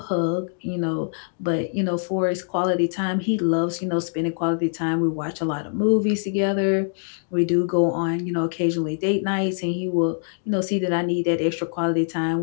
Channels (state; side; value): silent; right; digital silence